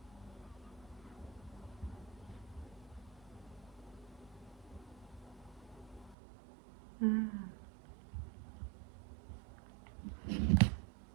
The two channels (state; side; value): drops out; left; at 6.2 s